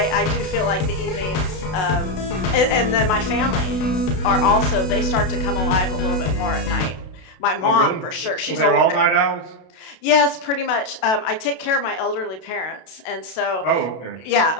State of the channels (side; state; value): right; late; 32 ms